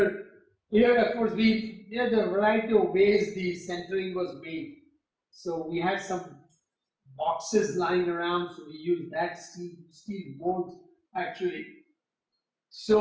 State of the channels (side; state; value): both; identical; correlation 1.00